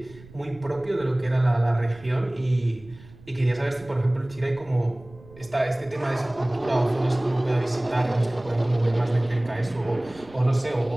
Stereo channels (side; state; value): right; noise; rumble, 22 dB below the sound